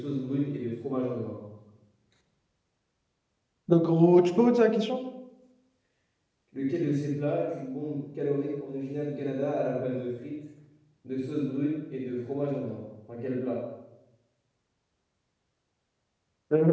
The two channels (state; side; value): identical; both; correlation 1.00